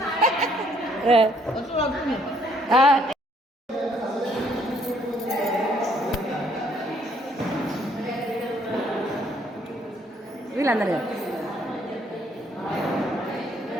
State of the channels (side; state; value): both; normal; correlation 0.66